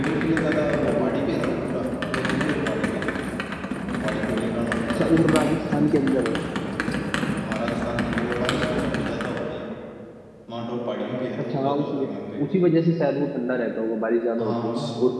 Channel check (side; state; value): both; identical; correlation 1.00